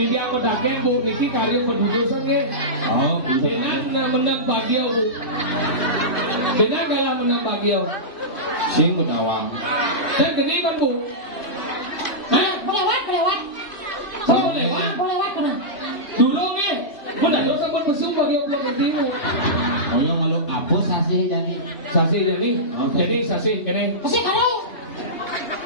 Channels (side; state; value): right; late; 3.0 ms